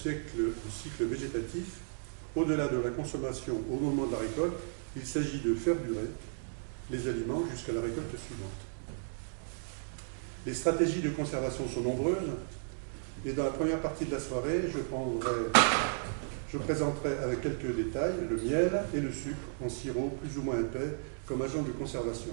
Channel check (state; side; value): silent; left; digital silence